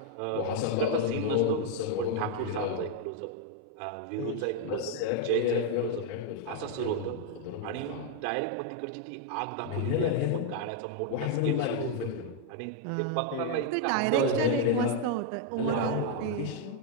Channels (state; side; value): different; both; correlation 0.00